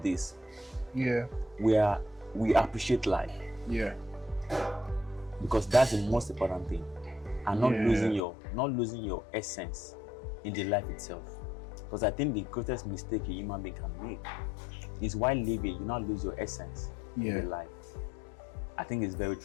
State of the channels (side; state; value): right; drops out; at 8.2 s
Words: this, we appreciate life. Yeah. Because that's the most important thing, and not losing your essence in the life itself. Because I think the greatest mistake a human being can make is while living, you not lose your essence in the life. I think it's very